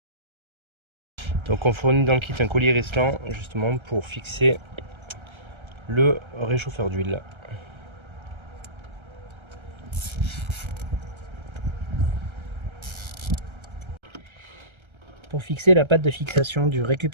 Donc on fournit dans le kit un collier Reslan justement pour fixer le réchauffeur d'huile. Pour fixer la patte de fixation du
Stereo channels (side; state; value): left; late; 1.3 ms